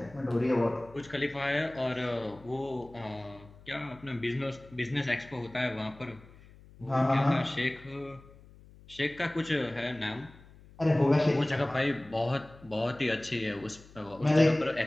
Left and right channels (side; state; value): left; noise; hum, 22 dB below the sound